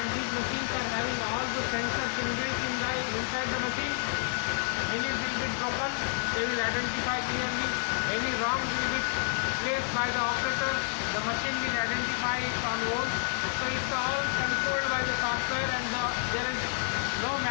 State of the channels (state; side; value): silent; right; digital silence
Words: these machines are having all the sensors inbuilt inside the machine. Any drill bit broken, they will identify clearly. Any wrong drill bit placed by the operator, the machine will identify it on hold. So it's all controlled by the software and there is no